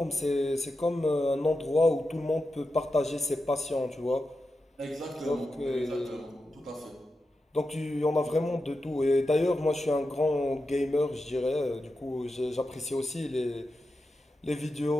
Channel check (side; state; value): both; normal; correlation 0.90